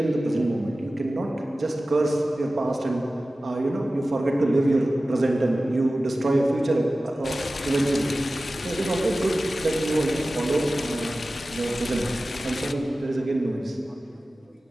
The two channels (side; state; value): both; normal; correlation 0.96